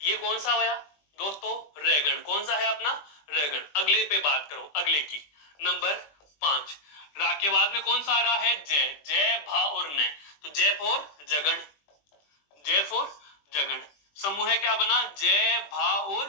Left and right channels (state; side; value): late; right; 20 ms